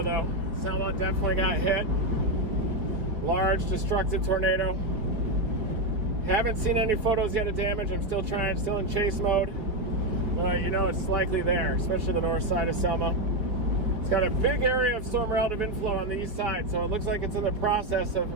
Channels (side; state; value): left; late; 4.4 ms